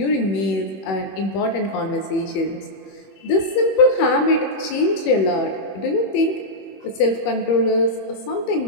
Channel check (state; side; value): late; right; 21 ms